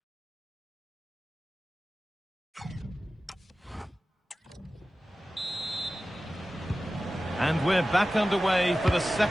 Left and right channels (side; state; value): both; normal; correlation 0.95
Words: And we're back underway for the